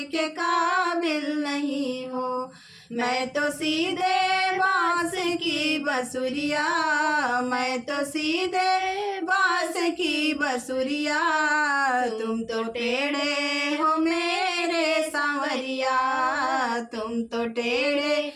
के काबिल नहीं हो। मैं तो सीधे बांस की बसुरिया, मैं तो सीधे बांस की बसुरिया, तुम तो टेढ़े हो मेरे सांवरिया, तुम तो टेढ़े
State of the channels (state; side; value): identical; both; correlation 1.00